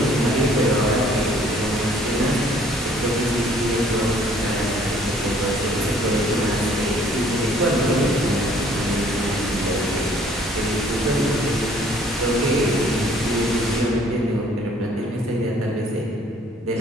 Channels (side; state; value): both; normal; correlation 0.59